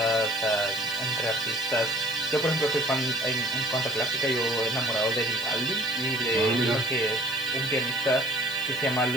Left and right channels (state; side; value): noise; left; hiss, 15 dB below the sound